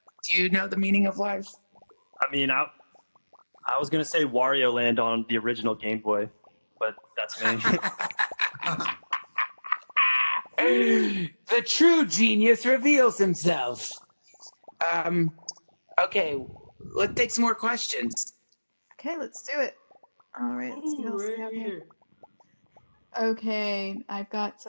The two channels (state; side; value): inverted; both; correlation -1.00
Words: Do you know the meaning of life? I mean, I was gonna say Wario Land on the original Game Boy, but that's me. The true genius reveals himself. Okay, let's take some more questions. Okay, let's do it. All right, let's see what else we Right have here. here. Okay, I've got